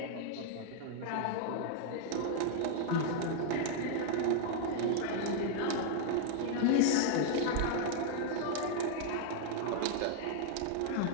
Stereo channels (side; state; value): both; different; correlation -0.01